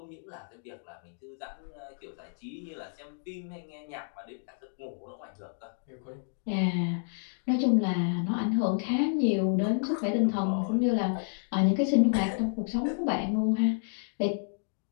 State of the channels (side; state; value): right; silent; digital silence